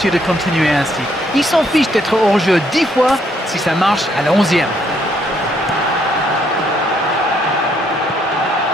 de continuer ainsi. Il s'en fiche d'être hors-jeu 10 fois si ça marche à la 11e.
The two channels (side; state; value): both; normal; correlation 0.70